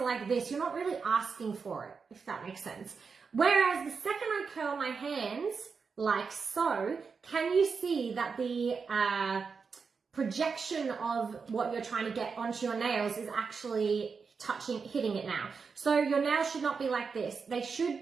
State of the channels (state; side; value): quieter; left; 5.3 dB